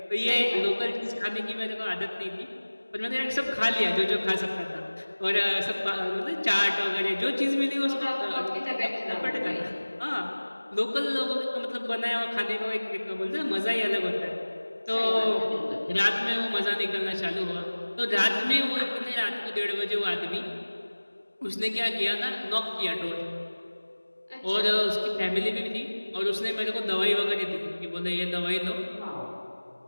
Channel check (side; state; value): both; inverted; correlation -1.00